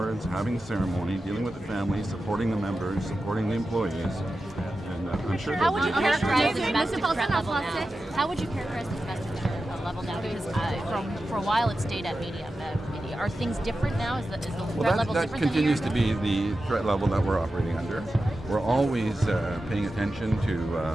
having the ceremony, dealing with the families, supporting the members, supporting the employees, and I'm sure how would you characterize the domestic threat level now? How would you characterize the domestic threat level now? Because for a while it stayed at medium. Are things different now? Is the threat level different? That continues to be the threat level that we're operating under. We're always paying attention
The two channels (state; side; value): normal; both; correlation 0.92